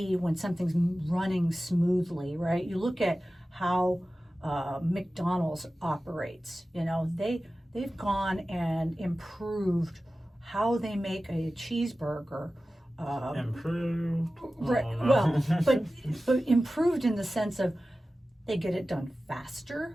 when something's running smoothly, right? You look at how McDonald's operates. You know, they've gone and improved how they make a cheeseburger. Improved. Right. Well, but improved in the sense of they get it done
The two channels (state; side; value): normal; both; correlation 0.95